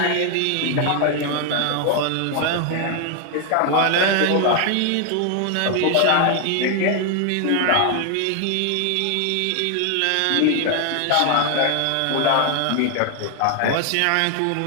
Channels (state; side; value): different; both; correlation 0.00